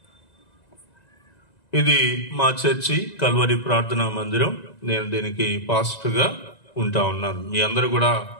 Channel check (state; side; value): late; right; 1.9 ms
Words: ఇది మా చర్చి కల్వరి ప్రార్థనా మందిరం. నేను దీనికి పాస్టర్గా ఉంటా ఉన్నాను. మీ అందరూ కూడా